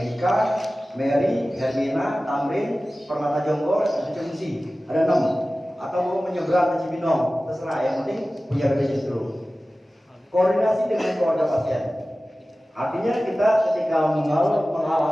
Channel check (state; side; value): normal; both; correlation 0.96